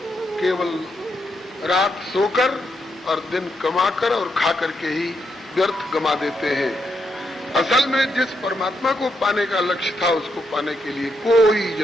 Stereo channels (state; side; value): normal; both; correlation 0.80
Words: केवल रात सोकर और दिन कमाकर और खाकर के ही व्यर्थ गमा देते हैं। असल में जिस परमात्मा को पाने का लक्ष्य था उसको पाने के लिए कोई